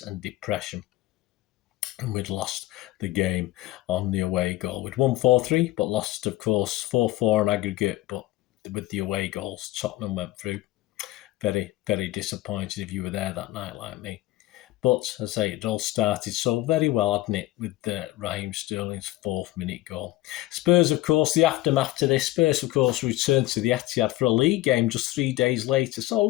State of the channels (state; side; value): quieter; right; 17.2 dB